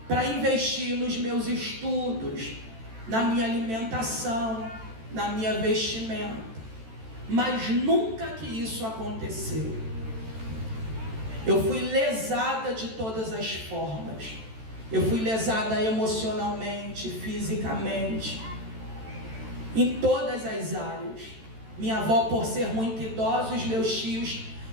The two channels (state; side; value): late; left; 14 ms